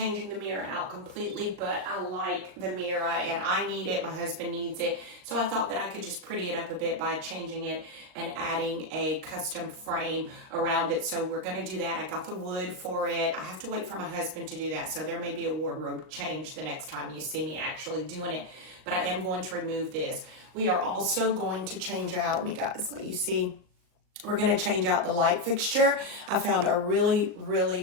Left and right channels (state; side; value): late; left; 38 ms